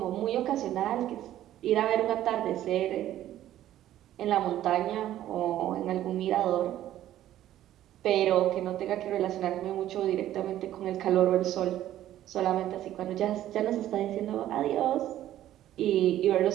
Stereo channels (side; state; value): left; quieter; 12.8 dB